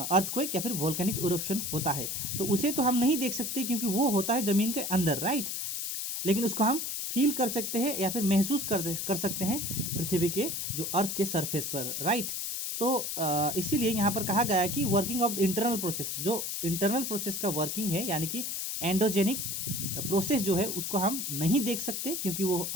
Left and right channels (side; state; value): left; noise; hiss, 3 dB below the sound